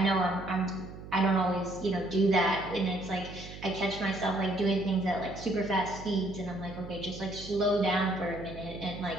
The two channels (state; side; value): noise; right; hum, 13 dB below the sound